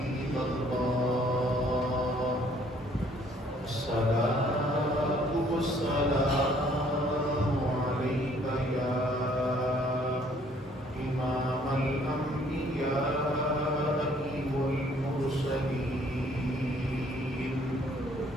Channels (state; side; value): normal; both; correlation 0.61